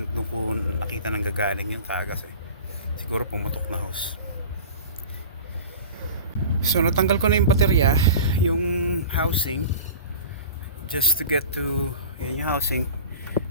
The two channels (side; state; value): both; inverted; correlation -0.37